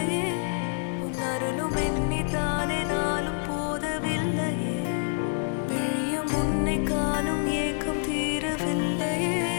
உன் அருளும் எண்ணித்தானே நாளும் போதவில்லையே விழியும் உன்னை காணும் ஏக்கம் தீரவில்லையே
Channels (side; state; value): right; silent; digital silence